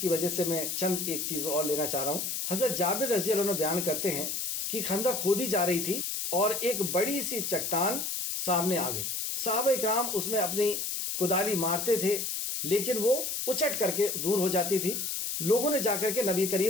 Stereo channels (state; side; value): noise; left; hiss, 2 dB below the sound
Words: وجہ سے میں چند ایک چیز اور لینا چاہ رہا ہوں. حضرت جابر رضی اللہ عنہ بیان کرتے ہیں کہ خندق کھودی جا رہی تھی اور ایک بڑی سی چٹان سامنے آ گئی. صحابہ اکرام اس میں اپنی کدالی مارتے تھے لیکن وہ اچٹ کر کے دور ہو جاتی تھی. لوگوں نے جا کر کے نبی